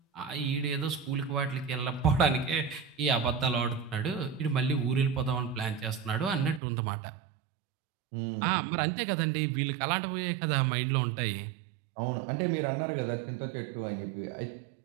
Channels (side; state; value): left; drops out; at 6.6 s